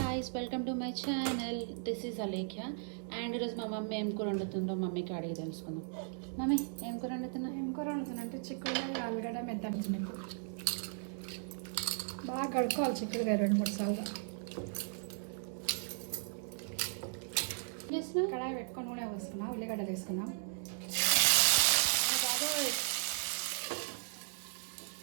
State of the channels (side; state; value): left; silent; digital silence